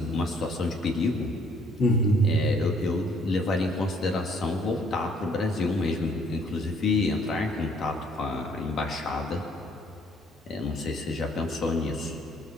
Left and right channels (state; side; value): normal; both; correlation 0.63